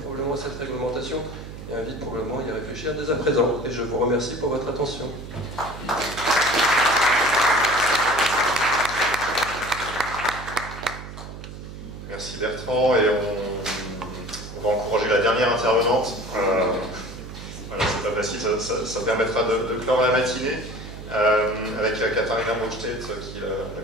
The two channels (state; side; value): noise; right; hum, 12 dB below the sound